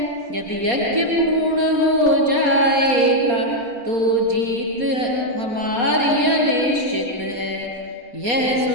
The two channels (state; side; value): late; left; 4.2 ms